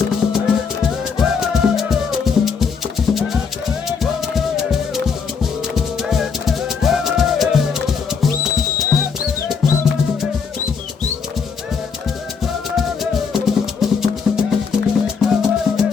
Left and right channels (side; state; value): right; quieter; 5.8 dB